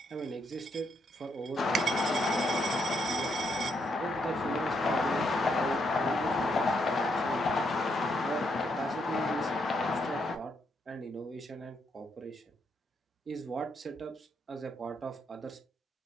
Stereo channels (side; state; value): both; normal; correlation 0.76